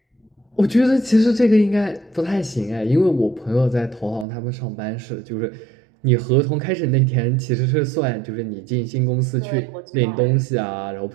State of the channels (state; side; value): drops out; left; at 4.2 s